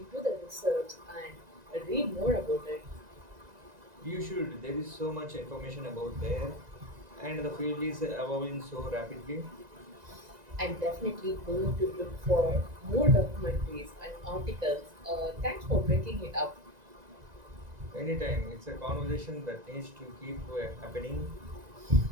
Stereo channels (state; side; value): late; left; 1.9 ms